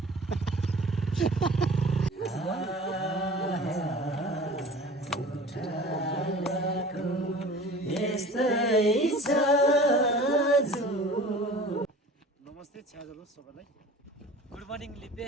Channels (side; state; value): both; normal; correlation 0.42